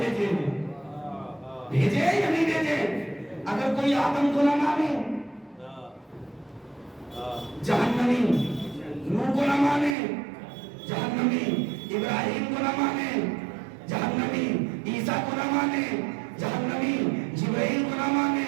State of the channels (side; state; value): left; drops out; at 10.0 s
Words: ہیں. بھیجے یا نہیں بھیجے؟ اگر کوئی آدم کو نہ مانے جہنمی، نوح کو نہ مانے جہنمی، ابراہیم کو نہ مانے جہنمی، عیسیٰ کو نہ مانے جہنمی، جبرائیل کو نہ